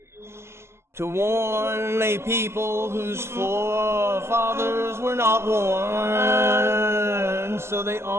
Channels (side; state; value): left; late; 0.12 ms